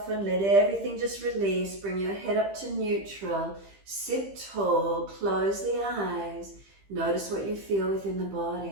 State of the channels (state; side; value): late; left; 15 ms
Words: let everything just release. Bring your head up to neutral. Sit tall, close the eyes. Notice what you feel within the